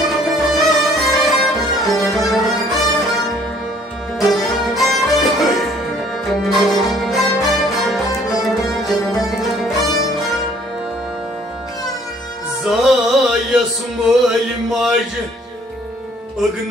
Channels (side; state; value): both; normal; correlation 0.59